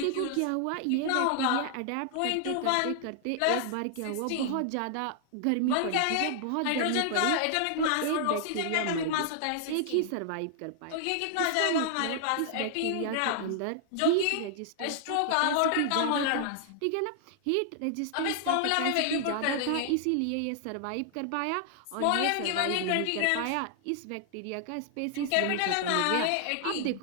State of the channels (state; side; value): different; both; correlation 0.00